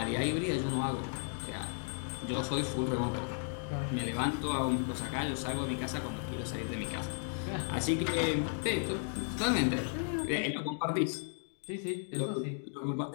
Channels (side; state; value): right; silent; digital silence